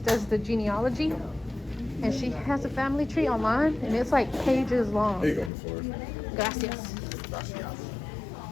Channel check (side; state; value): right; drops out; at 5.5 s